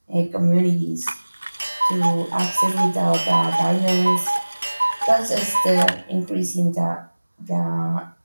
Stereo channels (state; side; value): inverted; both; correlation -1.00